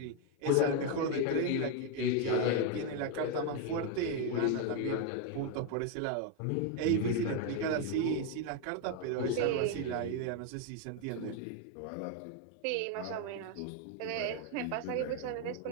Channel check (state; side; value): different; both; correlation 0.01